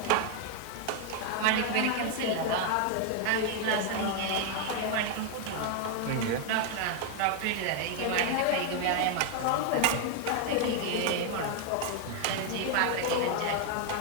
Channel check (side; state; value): both; different; correlation 0.00